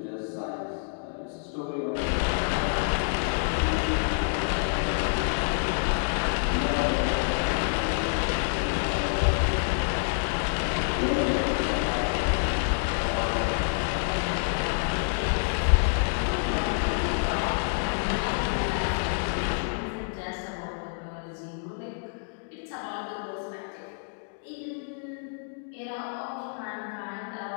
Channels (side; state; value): right; silent; digital silence